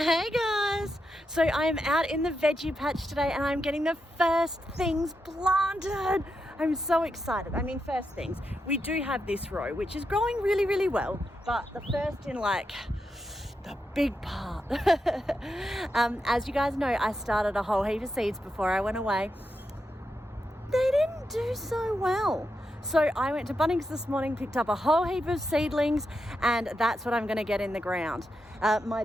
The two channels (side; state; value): both; normal; correlation 0.86